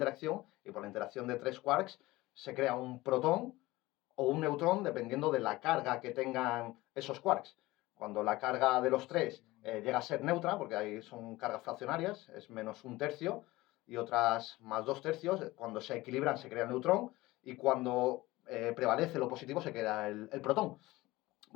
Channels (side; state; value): right; quieter; 19.2 dB